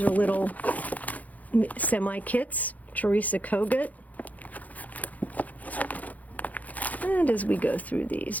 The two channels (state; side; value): late; right; 0.077 ms